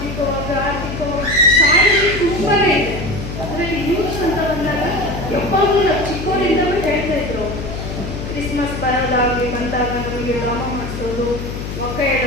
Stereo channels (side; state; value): left; noise; hum, 7 dB below the sound